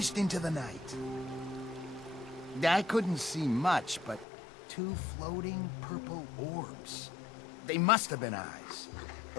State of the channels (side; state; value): right; drops out; at 4.2 s